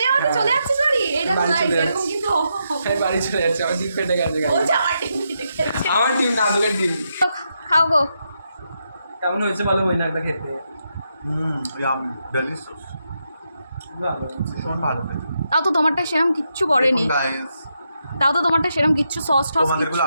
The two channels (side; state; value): both; inverted; correlation -0.82